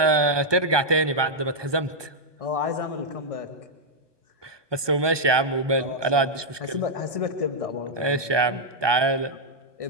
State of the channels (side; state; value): left; late; 1.2 ms